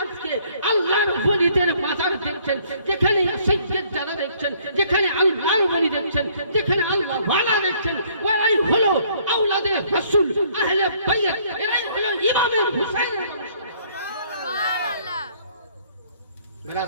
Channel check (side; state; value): both; inverted; correlation -0.62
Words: আজকে আল্লাহর ওলিদের মাজার দেখছেন, যেখানে সৈয়দ যারা দেখছেন, যেখানে আল্লাহর ওলি দেখছেন, যেখানে আল্লাহ ওয়ালা দেখছেন, ওরাই হলো আওলাদে রাসূল, আহলে বাইত, এরাই হলো ইমাম হুসাইনের বংশ। সুবহানাল্লাহ।